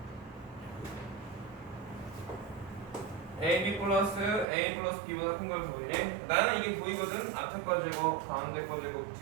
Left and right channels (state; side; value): drops out; left; at 4.5 s